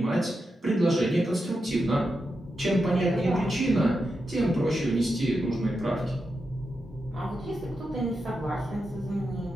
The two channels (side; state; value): both; normal; correlation 0.87